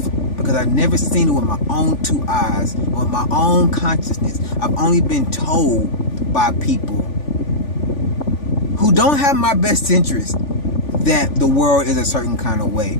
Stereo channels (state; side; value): late; right; 3.4 ms